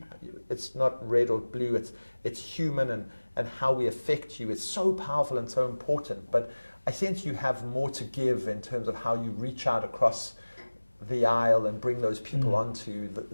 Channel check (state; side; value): inverted; both; correlation -1.00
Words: it's not red or blue, it's human, and how we affect you is so powerful and so important. But I sense you have more to give in terms of how you reach out across the aisle and bring those people onto